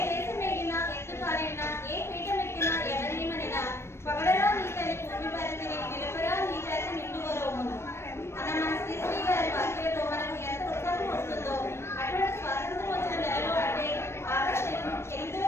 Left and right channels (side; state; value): right; late; 0.12 ms